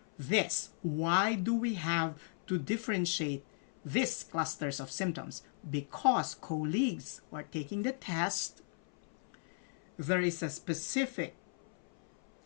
this? Why do we have to differentiate these clusters of symptoms? Because colleagues who are taking the test, there is a specific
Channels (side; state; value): right; silent; 54 dB below the other